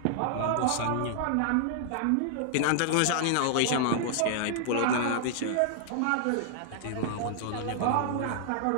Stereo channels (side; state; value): both; different; correlation -0.01